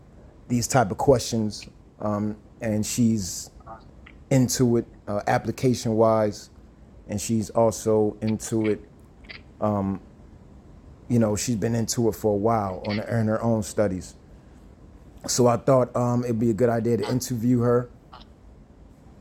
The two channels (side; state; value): both; identical; correlation 1.00